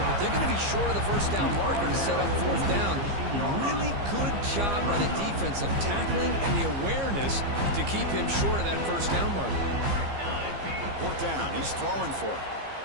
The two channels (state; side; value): late; left; 15 ms